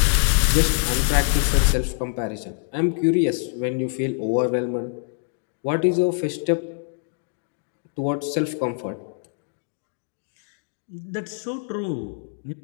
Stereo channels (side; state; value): right; silent; digital silence